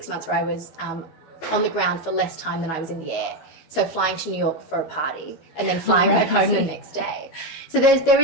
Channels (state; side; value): late; right; 12 ms